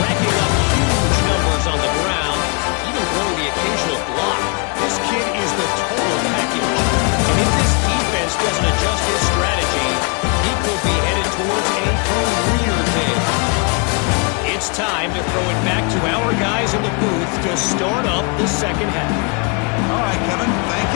up huge numbers on the ground, even throwing the occasional block. This kid is the total package. And if this defense doesn't adjust his strategy, he could be headed towards a career day. It's time to throw it back to our guys in the booth to start up the second half. All right, Kevin, thank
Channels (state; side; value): quieter; right; 34.9 dB